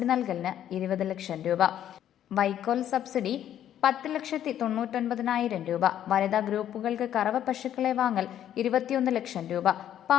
നൽകലിന് 20 ലക്ഷം രൂപ. വൈക്കോൽ സബ്സിഡി 10,99,000 രൂപ. വനിതാ ഗ്രൂപ്പുകൾക്ക് കറവ പശുക്കളെ വാങ്ങൽ 21 ലക്ഷം രൂപ.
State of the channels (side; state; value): right; quieter; 10.9 dB